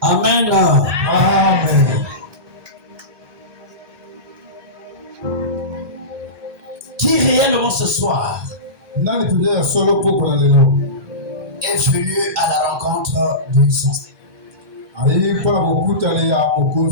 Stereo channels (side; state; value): left; late; 1.2 ms